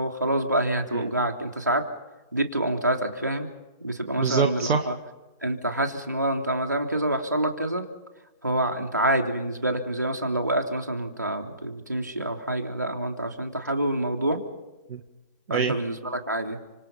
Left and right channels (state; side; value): inverted; both; correlation -0.50